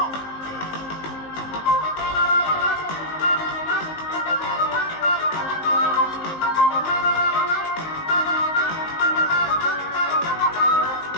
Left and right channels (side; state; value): right; late; 19 ms